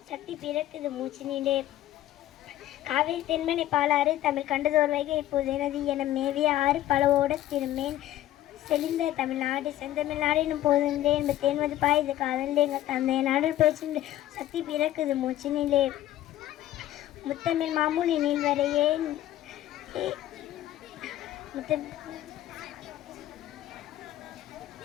சக்தி பிறக்குது மூச்சினிலே. காவிரி தென்மனை பாலாறு தமிழ் கண்டதோர் வைகை இப்போது எனது என மேவிய ஆறு பலவோட திருமேன் செழிந்த தமிழ்நாடு. செந்தமிழ்நாடின் போதிலே இன்ப தேன் வந்து பாயுது காதலே எங்கள் தந்தை நாடில் பேசின சக்தி பிறக்குது மூச்சினிலே. முத்தமிழ் மாமுனி நீள்வரையே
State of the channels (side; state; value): right; quieter; 13.7 dB